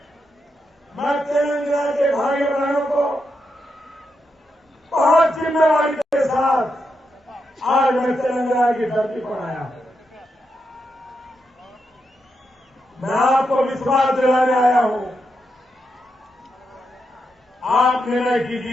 मैं तेलंगाना के भाई बहनों को बहुत जिम्मेवारी के साथ आज मैं तेलंगाना की धरती पर आया हूं। मैं आपको विश्वास दिलाने आया हूं। आप निर्णय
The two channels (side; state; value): both; normal; correlation 0.84